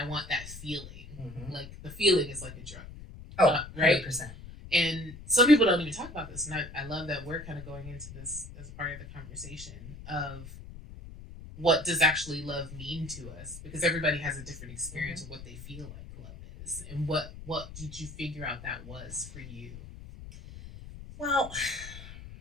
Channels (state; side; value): noise; left; rumble, 14 dB below the sound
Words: want that feeling. Like the feeling is like a drug. Oh, right. 100%. And some people don't even talk about this, and I love that we're kind of going into this as a part of the conversation of what does actually love mean to us, because everybody has a different experience of what they feel like love is, and what did you figure out that was for you? Well,